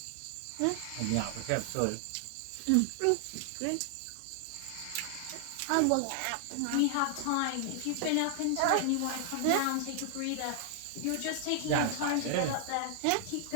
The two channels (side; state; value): both; different; correlation 0.00